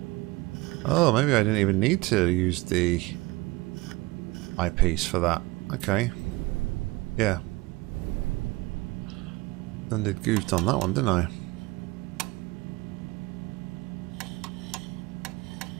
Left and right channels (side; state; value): left; quieter; 22.5 dB